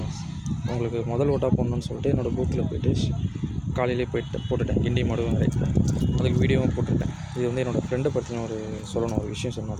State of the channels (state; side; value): identical; both; correlation 1.00